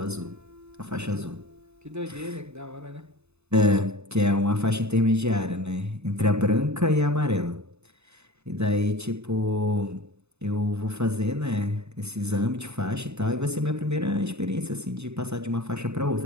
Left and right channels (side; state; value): left; late; 0.81 ms